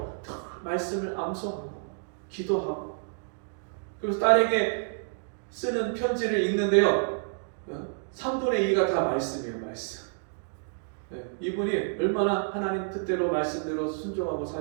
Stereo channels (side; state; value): left; silent; digital silence